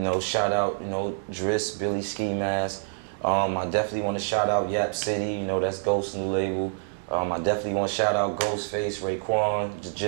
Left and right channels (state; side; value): silent; left; digital silence